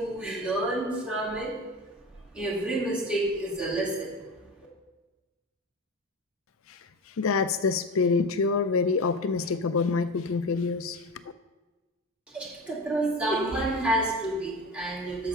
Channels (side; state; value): both; normal; correlation 0.28